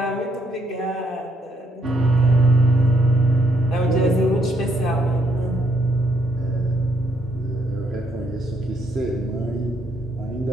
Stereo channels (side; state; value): both; normal; correlation 0.72